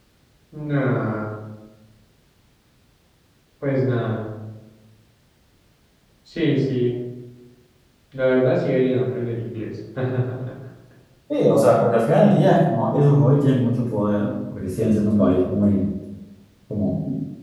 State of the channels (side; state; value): both; identical; correlation 1.00